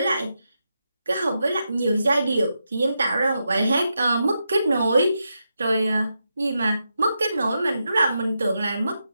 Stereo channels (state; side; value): inverted; both; correlation -0.86